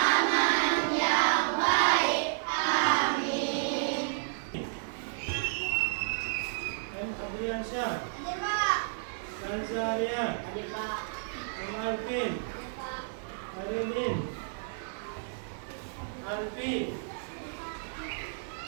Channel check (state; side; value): silent; left; 57 dB below the other